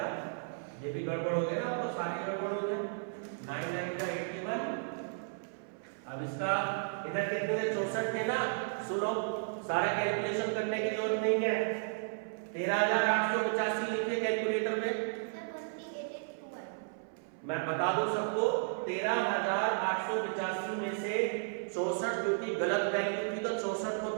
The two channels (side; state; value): left; silent; 55 dB below the other